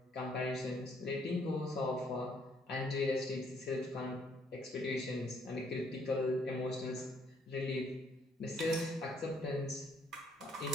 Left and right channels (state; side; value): normal; both; correlation 0.63